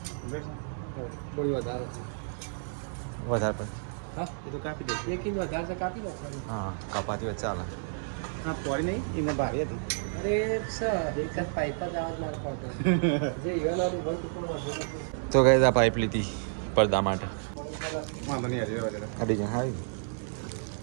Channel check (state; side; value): silent; left; digital silence